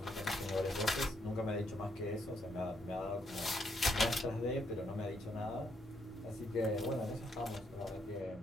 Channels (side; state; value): both; normal; correlation 0.75